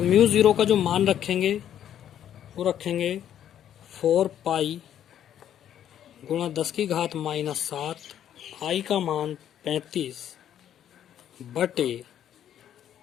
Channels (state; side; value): quieter; right; 10.3 dB